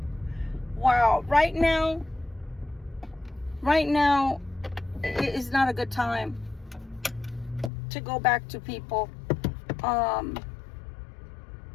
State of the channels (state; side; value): drops out; right; at 7.7 s